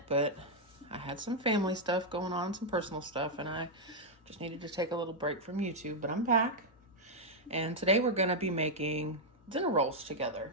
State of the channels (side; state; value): both; normal; correlation -0.02